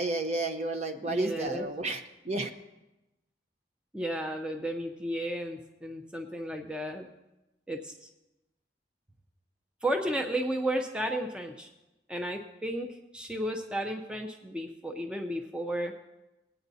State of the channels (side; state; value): both; normal; correlation 0.68